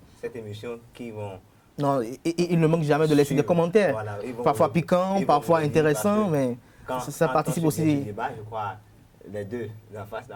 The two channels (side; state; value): both; identical; correlation 1.00